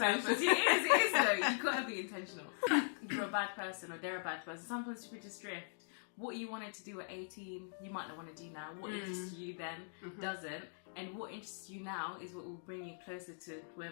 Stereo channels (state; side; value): silent; right; digital silence